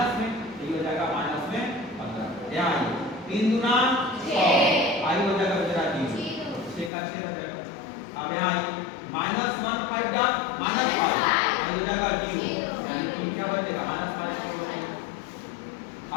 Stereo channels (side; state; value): right; drops out; at 6.9 s